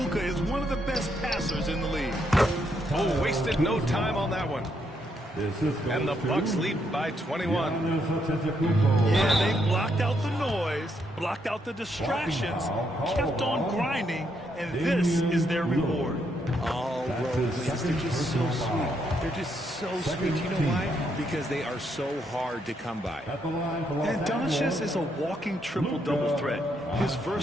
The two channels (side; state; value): both; normal; correlation 0.76